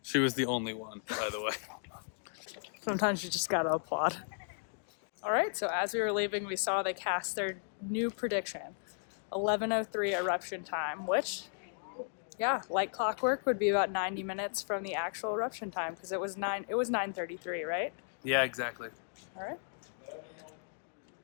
She was the only one, by the way. Sometimes you just gotta applaud. All right, so as we were leaving, we saw they cast their new prediction, 11:03 eruption time, which, yeah, like clockwork, would be about 90 minutes from the actual eruption time because it was 9:33, right? Yeah, exactly. All right.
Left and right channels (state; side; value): silent; right; digital silence